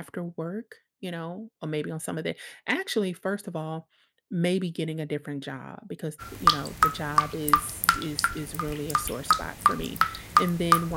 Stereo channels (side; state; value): both; identical; correlation 1.00